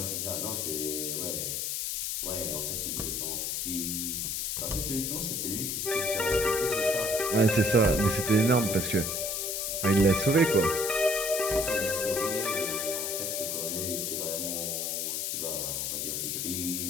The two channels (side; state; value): left; noise; hiss, 1 dB below the sound